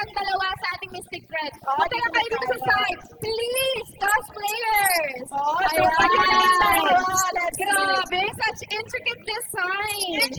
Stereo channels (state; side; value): identical; both; correlation 1.00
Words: dalawa sa ating Mystic Thread. Punta lang kayo dito sa side. Please, cosplayers! Oo, tayo na yung dalawa. Let's Grabe, such intricate designs.